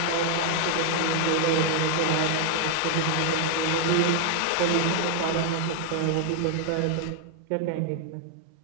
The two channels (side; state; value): both; different; correlation 0.00